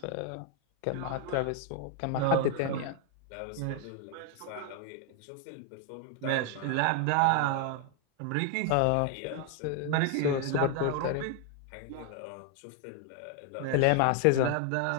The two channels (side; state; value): both; different; correlation 0.00